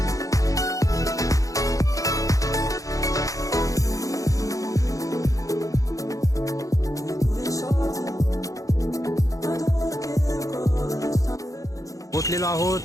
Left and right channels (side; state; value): right; late; 0.16 ms